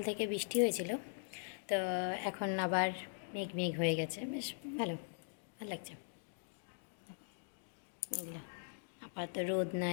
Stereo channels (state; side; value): silent; right; digital silence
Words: থেকে বৃষ্টি হয়েছিল, তো এখন আবার মেঘ মেঘ হয়ে গেছে, বেশ ভালো ভালো লাগছে। মেঘলা, আপাতত রোদ